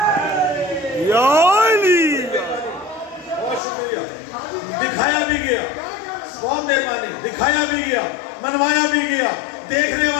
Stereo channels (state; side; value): drops out; right; at 3.6 s